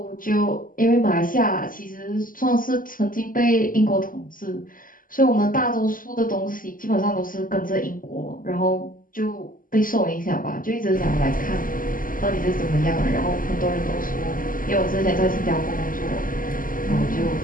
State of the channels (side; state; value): right; late; 0.40 ms